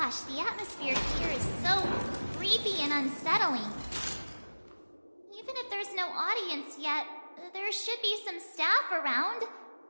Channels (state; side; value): inverted; both; correlation -1.00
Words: Gosh, the atmosphere here is so creepy and unsettling. Even if there's no audience yet, there should be some staff around.